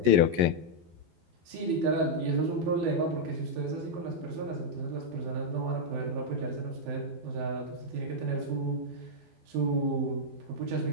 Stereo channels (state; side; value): late; left; 12 ms